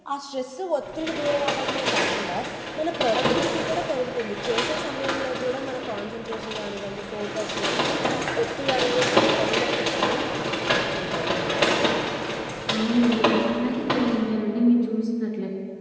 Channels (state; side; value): identical; both; correlation 1.00